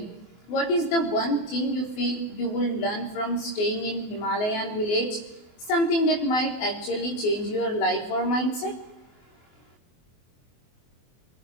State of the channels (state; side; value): late; right; 24 ms